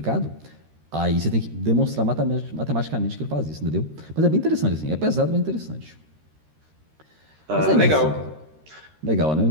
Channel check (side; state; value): left; late; 13 ms